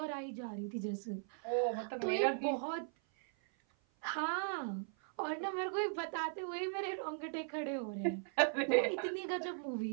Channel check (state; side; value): silent; left; 52 dB below the other